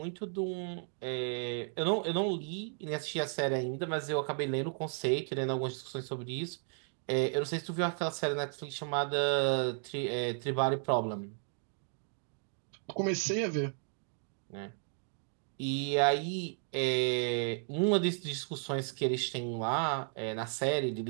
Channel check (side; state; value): left; silent; 55 dB below the other